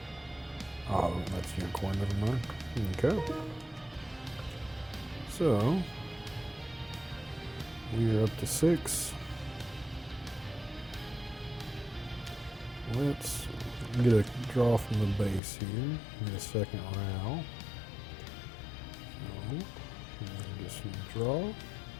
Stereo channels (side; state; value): right; drops out; at 15.4 s